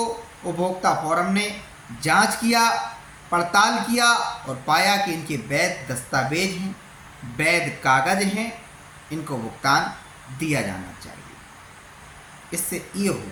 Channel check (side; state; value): both; identical; correlation 1.00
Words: उपभोक्ता फोरम ने जांच किया, पड़ताल किया और पाया कि इनके वैध दस्तावेज हैं, वैध कागज हैं, इनको भुगतान दिया जाना चाहिए। इससे ये